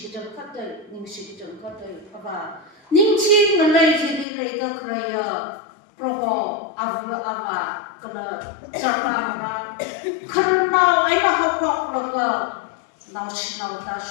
katai apa. Ning si nalai hile leda keraya rokok ava kalau cara karena ayah hafak laga nasional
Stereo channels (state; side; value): drops out; right; at 4.2 s